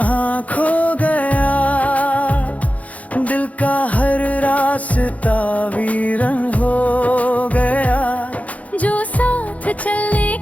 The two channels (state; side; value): late; right; 0.069 ms